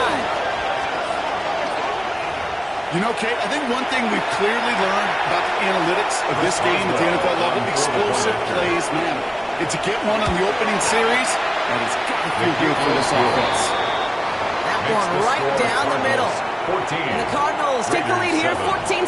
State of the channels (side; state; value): both; identical; correlation 1.00